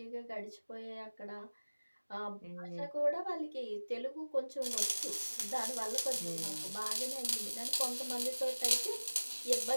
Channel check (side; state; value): both; inverted; correlation -1.00